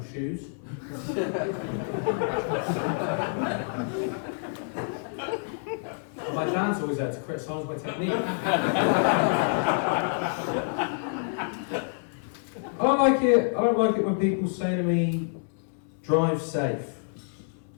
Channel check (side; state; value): right; silent; 60 dB below the other